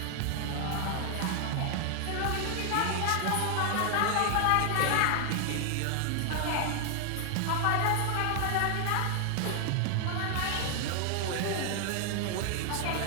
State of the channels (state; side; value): different; both; correlation 0.00